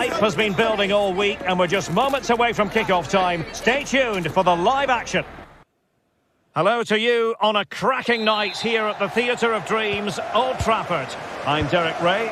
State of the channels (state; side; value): identical; both; correlation 1.00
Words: has been building all week and we're just moments away from kick-off time. Stay tuned for the live action. Hello to you on a cracking night here at the Theatre of Dreams, Old Trafford. I'm Derek Ray